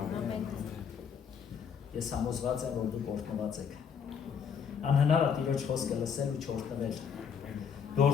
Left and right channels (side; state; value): right; quieter; 7.1 dB